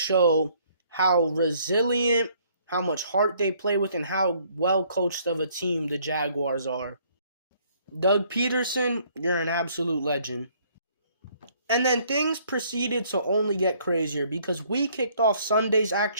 how resilient, how much heart they play with, and how well coached of a team the Jaguars are. Doug Peterson, you're an absolute legend. And then things proceeded to only get crazier because we kicked off Sunday's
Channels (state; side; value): inverted; both; correlation -0.63